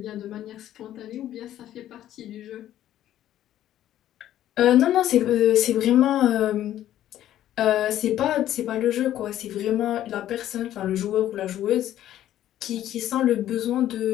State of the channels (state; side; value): quieter; right; 12.4 dB